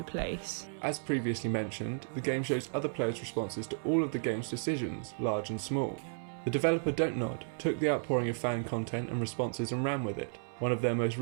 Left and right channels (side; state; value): left; silent; 55 dB below the other